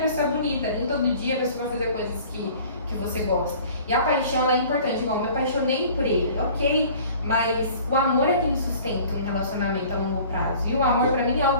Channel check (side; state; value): both; inverted; correlation -0.48